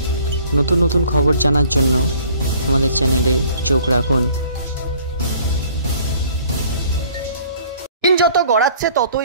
নতুন নতুন খবর জানার জন্য আমাদের চ্যানেলে চোখ রাখুন। দিন যত গড়াচ্ছে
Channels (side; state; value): both; inverted; correlation -0.55